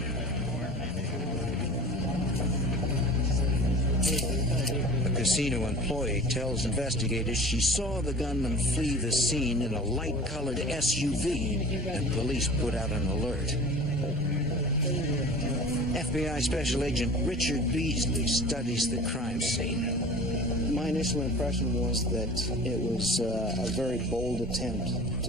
A casino employee tells investigators she saw the gunman flee the scene in a light-colored SUV, and police put out an alert. FBI Special Agent Richard Beasley studies the crime scene. My initial impression was that it was a very bold attempt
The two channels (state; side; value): normal; both; correlation 0.40